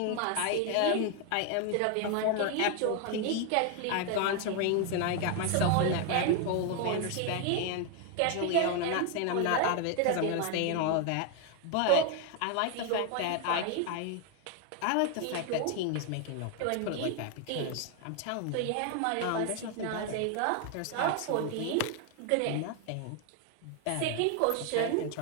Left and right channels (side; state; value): both; different; correlation 0.01